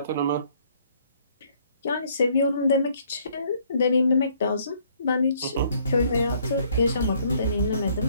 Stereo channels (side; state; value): both; inverted; correlation -0.64